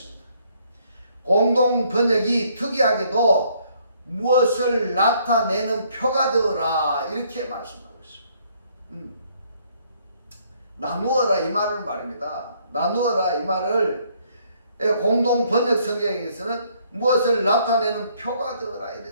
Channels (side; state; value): both; inverted; correlation -0.66